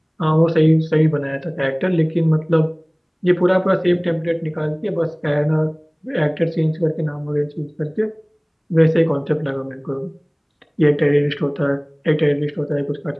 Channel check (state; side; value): identical; both; correlation 1.00